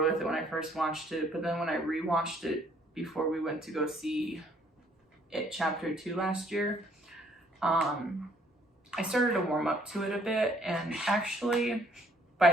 with it when I first watched it, but then when I rewatched it before we went to go see It Chapter 2 last year, I started to warm up to it a bit, and actually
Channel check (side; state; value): both; normal; correlation 0.64